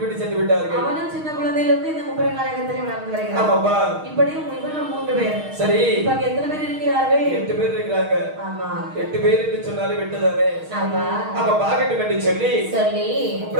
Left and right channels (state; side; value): late; left; 6.4 ms